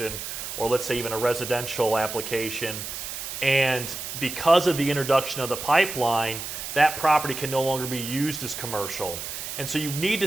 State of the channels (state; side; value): noise; right; hiss, 7 dB below the sound